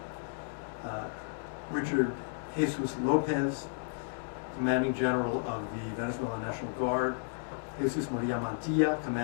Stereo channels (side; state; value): right; silent; digital silence